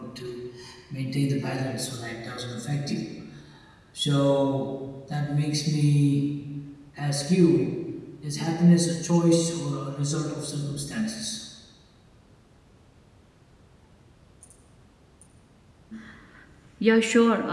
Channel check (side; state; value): both; identical; correlation 1.00